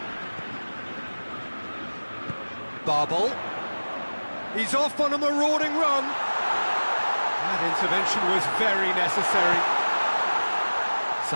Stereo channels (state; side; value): inverted; both; correlation -1.00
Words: Barbel. He's off on a marauding run. That intervention was very necessary.